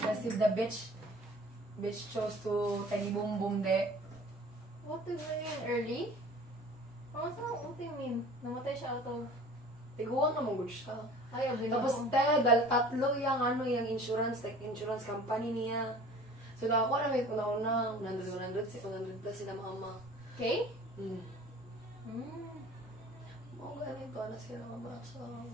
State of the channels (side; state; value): both; normal; correlation 0.45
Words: the bitch chose to tiny boom boom de. What do you mean? Early? What do you mean? Namatay siya out of... Tiguan na mong siya. Ay, abin Tapos tatlo yung insurance, like insurance company niya. So ako na may una 100 plus sila mama. Okay? Hmm. Mm. Mga ganito na sila mama. So